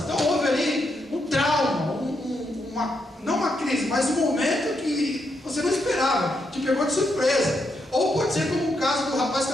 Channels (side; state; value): both; normal; correlation 0.80